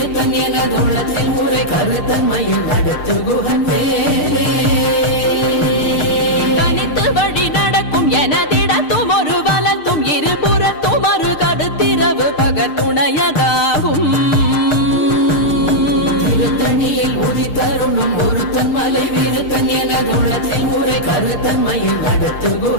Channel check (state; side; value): late; right; 6.6 ms